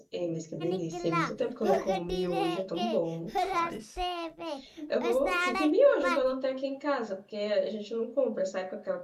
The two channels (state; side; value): identical; both; correlation 1.00